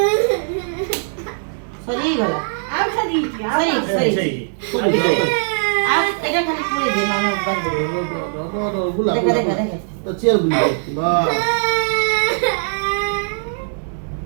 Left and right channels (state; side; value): silent; left; digital silence